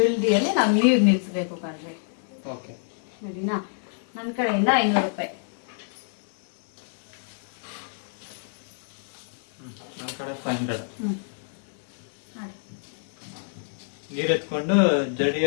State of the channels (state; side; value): silent; right; digital silence